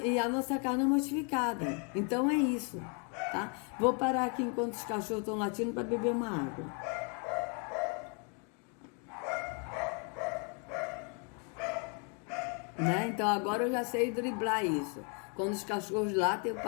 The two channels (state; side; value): quieter; right; 37.6 dB